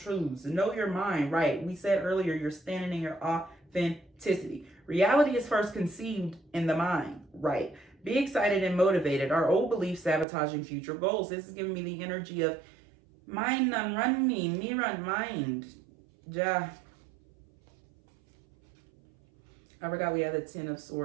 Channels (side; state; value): left; drops out; at 10.2 s